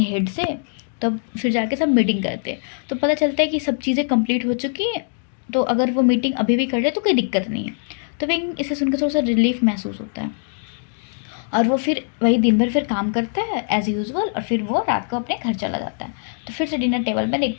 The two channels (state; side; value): silent; right; digital silence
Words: हेड से, तब फिर जाके सब मीटिंग करते हैं। तो पता चलता है कि सब चीज़ें कंप्लीट हो चुकी हैं, तो अगर वो मीटिंग अभी भी कर ले तो कोई दिक्कत नहीं है। तो विंग इसे सुनकर थोड़ा सा रिलीफ महसूस होता है, और वो फिर वही दिन भर फिर काम करता है एज़ यूजुअल, और फिर वो रात को अपने घर चला जाता है। तो फिर से डिनर टेबल में